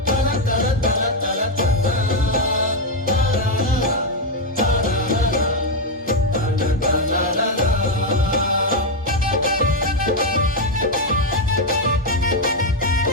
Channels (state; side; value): normal; both; correlation 0.03